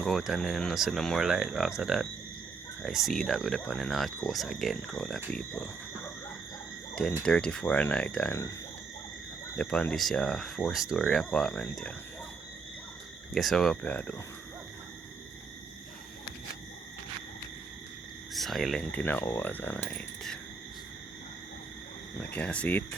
go out and then I see no more light after that. I see that we're up on the north coast again, crowd of people. 10:34 at night and upon this 4-story apartment here. Guess how up here do? Silent in the hours of night. I can't see it.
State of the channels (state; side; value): quieter; left; 4.8 dB